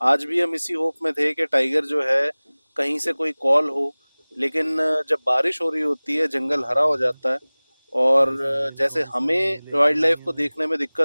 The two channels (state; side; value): inverted; both; correlation -1.00